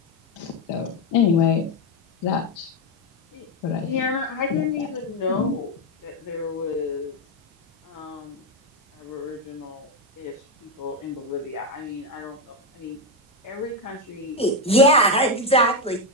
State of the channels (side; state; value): both; normal; correlation 0.08